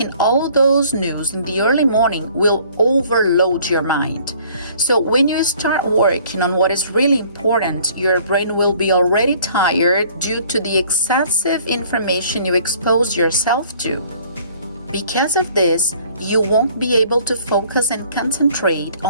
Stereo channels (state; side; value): inverted; both; correlation -0.56